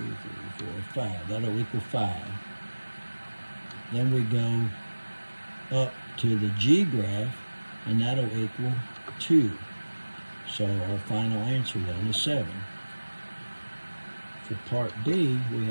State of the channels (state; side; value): inverted; both; correlation -1.00